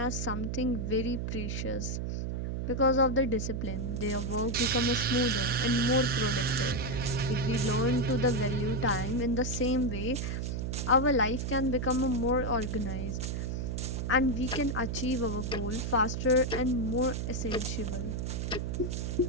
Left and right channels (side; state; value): right; noise; hum, 2 dB below the sound